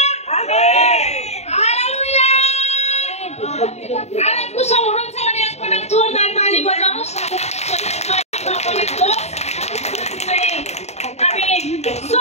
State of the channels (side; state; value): right; late; 0.32 ms